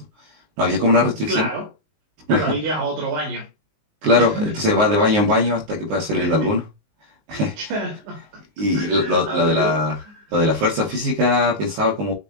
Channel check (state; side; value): late; left; 19 ms